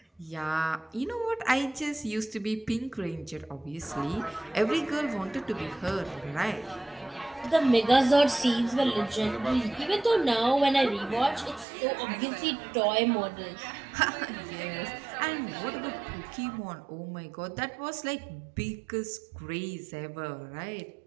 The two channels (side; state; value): left; drops out; at 11.7 s